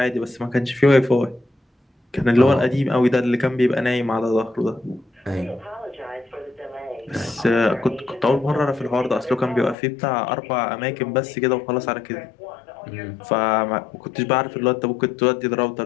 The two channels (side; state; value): right; drops out; at 9.8 s